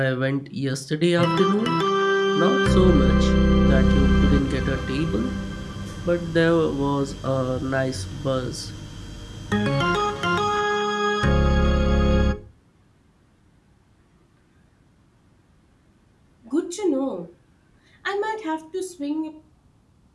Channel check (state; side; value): identical; both; correlation 1.00